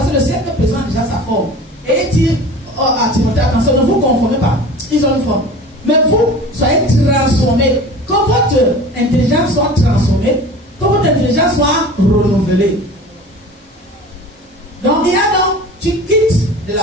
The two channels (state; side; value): normal; both; correlation 0.39